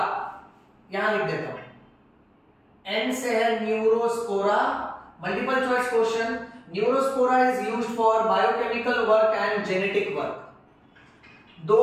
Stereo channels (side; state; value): both; identical; correlation 1.00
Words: यहां लिख देता हूं, एन से है Neurospora. Multiple choice question, Neurospora is used for biochemical work and genetic work. 2